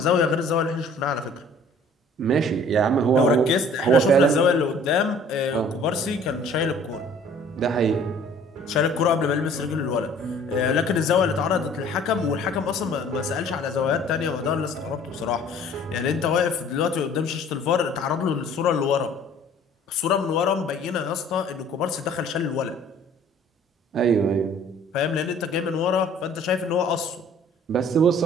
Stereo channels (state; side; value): normal; both; correlation 0.52